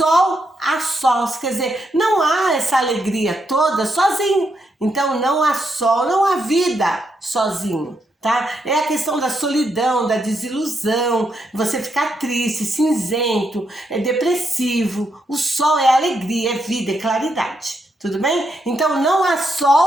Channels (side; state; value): both; normal; correlation 0.80